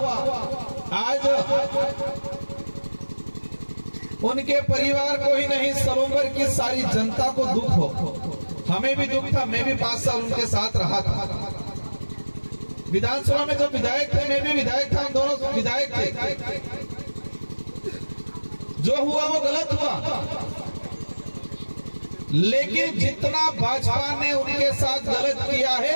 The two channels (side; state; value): both; inverted; correlation -1.00